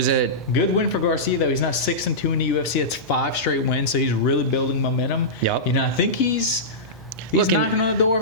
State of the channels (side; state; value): both; normal; correlation -0.15